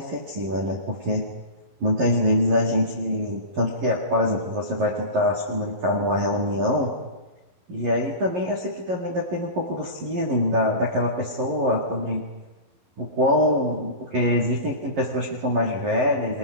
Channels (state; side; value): late; left; 11 ms